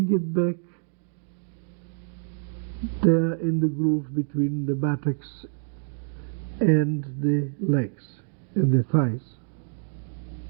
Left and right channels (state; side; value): silent; left; digital silence